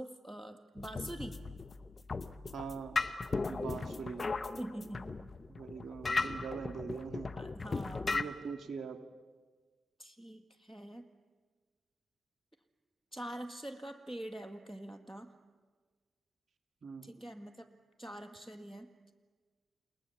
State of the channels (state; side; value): normal; both; correlation 0.91